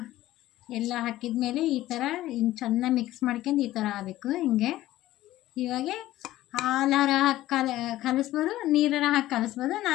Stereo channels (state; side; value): quieter; right; 15.3 dB